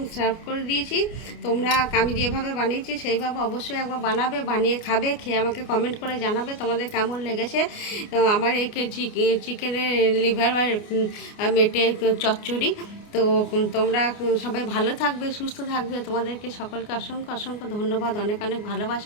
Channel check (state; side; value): late; right; 29 ms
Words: সার্ভ করে দিয়েছি। তোমরা আমি যেভাবে বানিয়েছি সেইভাবে অবশ্যই একবার বানাবে, বানিয়ে খাবে, খেয়ে আমাকে কমেন্ট করে জানাবে তোমাদের কেমন লেগেছে আমার এই চিকেনের লিভার বা মেটে চচ্চড়ি। তো তোমরা সবাই ভালো থাকবে, সুস্থ থাকবে। তোমাদেরকে সকলকে অসংখ্য অসংখ্য ধন্যবাদ, অনেক অনেক